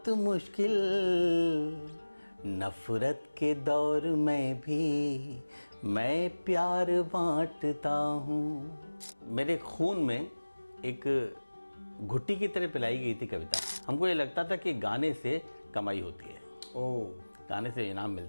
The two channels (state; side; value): inverted; both; correlation -1.00